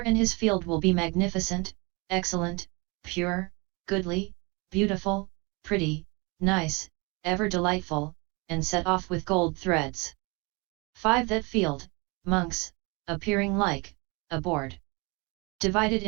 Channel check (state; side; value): quieter; left; 28.1 dB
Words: his field will be magnificent, excellent, pure, goodly, beautiful, pretty, nice, ever delightful, and set off with gold threads. 5. That field, monks, appearing like a board, divided